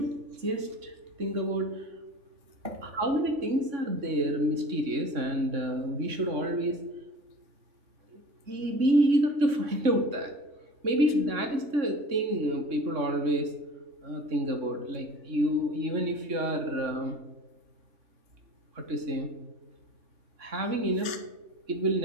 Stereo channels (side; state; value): left; late; 3.6 ms